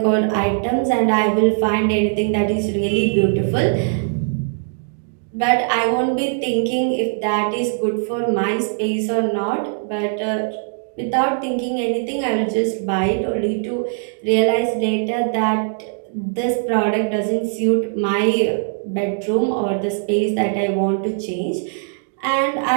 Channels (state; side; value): silent; left; digital silence